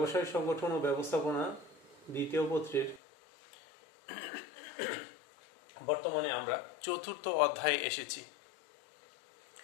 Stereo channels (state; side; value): drops out; right; at 3.0 s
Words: সংগঠন ও ব্যবস্থাপনা দ্বিতীয় পত্রের বর্তমানে আমরা চতুর্থ অধ্যায়ে এসেছি।